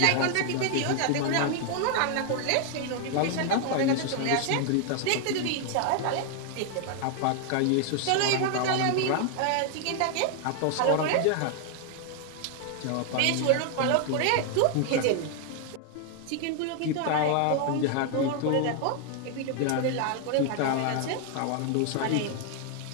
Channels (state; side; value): different; both; correlation 0.00